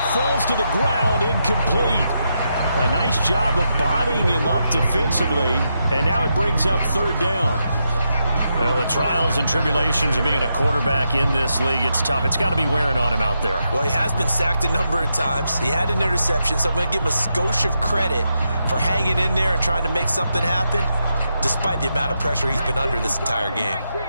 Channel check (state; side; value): inverted; both; correlation -0.84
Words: falls to the ground, incomplete. A nice job of bodying him up defensively, and now it brings up 3rd down. Well, the trials and tribulations of being a quarterback in this league, it's tough. It's got to be wearing on him out there. Well, he has been sacked a number of times. He had an interception, so I'm going to give him a skosh of credit for hanging in there and trying to make something happen, despite the amount of pressure he's been under this entire game.